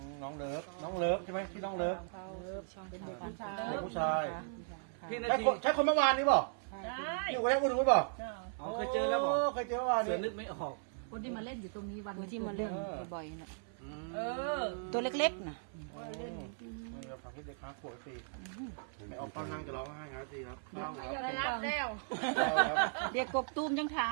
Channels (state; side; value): silent; left; 53 dB below the other